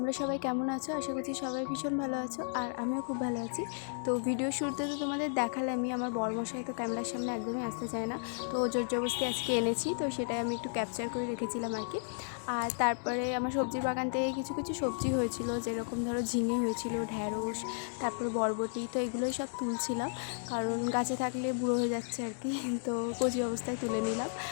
সবাই কেমন আছো? আশা করছি সবাই ভীষণ ভালো আছো, আর আমিও খুব ভালো আছি। তো ভিডিও শুরুতে তো তোমাদের দেখালামই, আমার বরমশাই তো ক্যামেরার সামনে একদমই আসতে চায় না, তো জোর জবরদস্তি আজকে এনেছি, তো সেটাই আমি একটু ক্যাপচার করে রেখেছিলাম আর কি। আর তারপরে আমার সবজির বাগান থেকে কিছু কিছু সবজি হয়েছিল, যেরকম ধরো ঝিঙে হয়েছিল, ঢ্যাঁড়স, তারপরে বরবটি, তো এগুলোই সব তুলছিলাম, কারণ গাছে থাকলে বুড়ো হয়ে যাচ্ছে আর কি, তো কচি অবস্থায় তুলে নিলাম।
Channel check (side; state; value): right; silent; digital silence